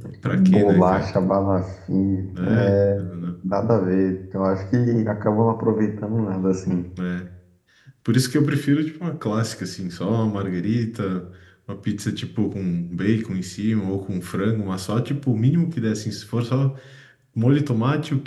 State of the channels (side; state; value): both; identical; correlation 1.00